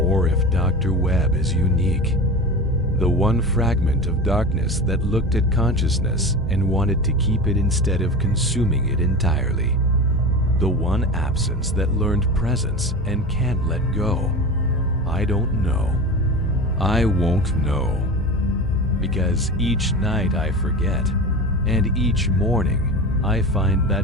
if Dr. Webb is unique. The one fragment of darkness that looked at consciousness and wanted to keep it instead of consuming it entirely. The one absence that learned presence and can't let go. I don't know. I won't know. because each night I forget, and each morning I find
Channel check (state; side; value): normal; both; correlation 0.29